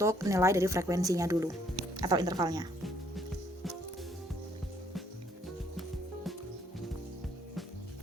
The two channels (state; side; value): normal; both; correlation 0.66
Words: nilai dari frekuensinya dulu atau intervalnya.